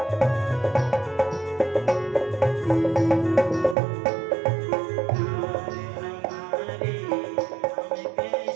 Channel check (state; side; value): drops out; left; at 3.8 s